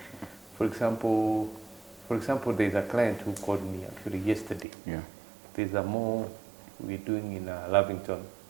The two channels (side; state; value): left; drops out; at 4.7 s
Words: For example, there's a client who called me actually yesterday. Yeah. There's a mall we're doing in Lavington.